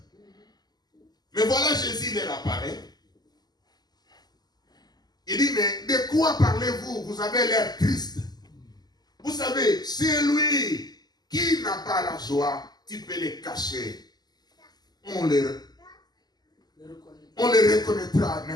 Mais voilà, Jésus leur apparaît. Il dit, mais de quoi parlez-vous? Vous avez l'air triste. Vous savez, c'est lui qui n'a pas la joie, tu peux les cacher. On les reconnaîtra.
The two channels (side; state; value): right; late; 0.20 ms